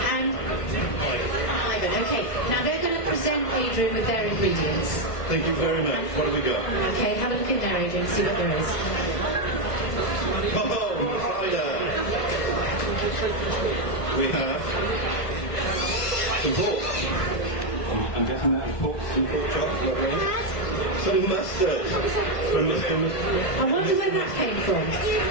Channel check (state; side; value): late; right; 1.4 ms